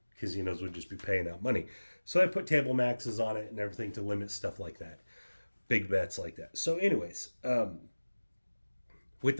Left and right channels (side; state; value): both; inverted; correlation -1.00